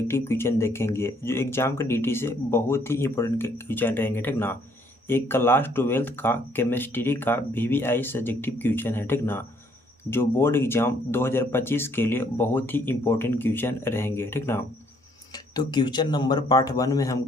क्वेश्चन देखेंगे जो एग्जाम के डीटी से बहुत ही इंपॉर्टेंट क्वेश्चन रहेंगे, ठीक ना। एक क्लास 12th का केमिस्ट्री का वीवीआई सब्जेक्टिव क्वेश्चन है, ठीक ना, जो बोर्ड एग्जाम 2025 के लिए बहुत ही इंपॉर्टेंट क्वेश्चन रहेंगे, ठीक ना। तो क्वेश्चन नंबर पार्ट 1 में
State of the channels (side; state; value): both; normal; correlation 0.66